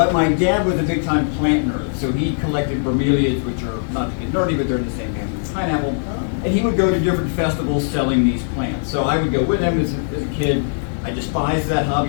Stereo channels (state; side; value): silent; right; digital silence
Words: my dad was a big-time plant nerd, so he collected bromeliads, which are, not to get nerdy, but they're in the same family as pineapple. And he would go to different festivals selling these plants. So I would go with him as a kid. I despised that